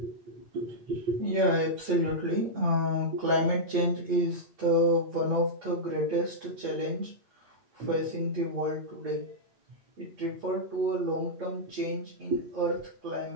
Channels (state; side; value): late; left; 8.4 ms